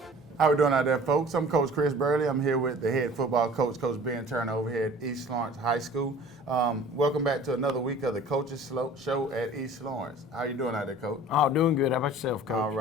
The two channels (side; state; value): both; normal; correlation 0.46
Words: How we doing out there, folks? I'm Coach Chris Burley. I'm here with the head football coach, Coach Ben Turner, over here at East Lawrence High School. Welcome back to another week of the Coaches Show at East Lawrence. How you doing out there, Coach? Oh, doing good. How about yourself, Coach? All